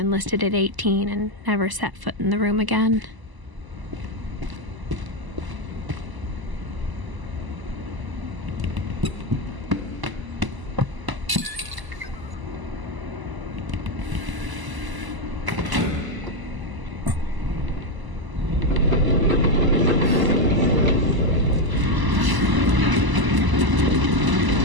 at 18 and never set foot in the room again.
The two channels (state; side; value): late; left; 1.0 ms